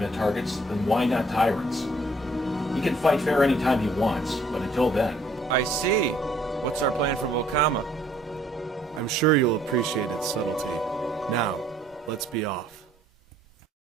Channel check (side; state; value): both; normal; correlation 0.62